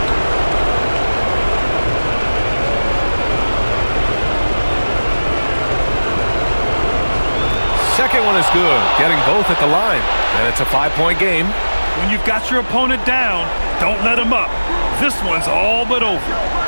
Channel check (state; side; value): inverted; both; correlation -1.00